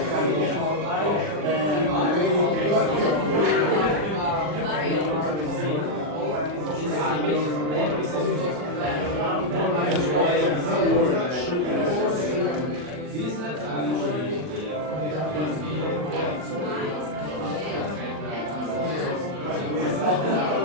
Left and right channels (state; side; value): late; left; 40 ms